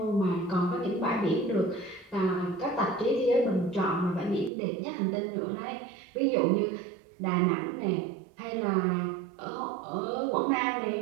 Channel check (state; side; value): drops out; left; at 4.5 s